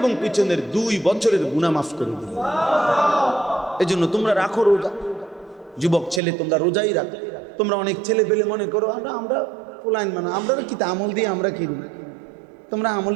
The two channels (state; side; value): drops out; left; at 6.2 s